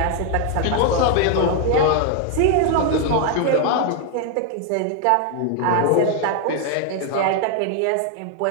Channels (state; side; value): different; both; correlation 0.00